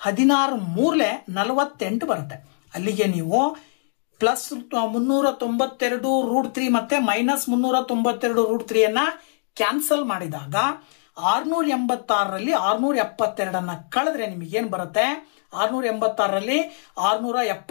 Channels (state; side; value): silent; right; digital silence